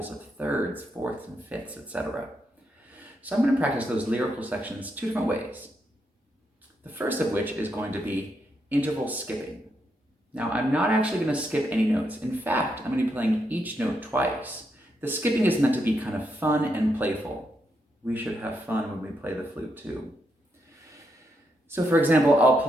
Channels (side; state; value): both; normal; correlation 0.81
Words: of thirds, fourths, and fifths, etc. So I'm going to practice those lyrical sections two different ways. The first of which is going to be interval skipping. Now, I'm not actually going to skip any notes. In fact, I'm going to be playing each note twice. The skipping is meant to be kind of fun and playful. We should have fun when we play the flute too. So for example, I'll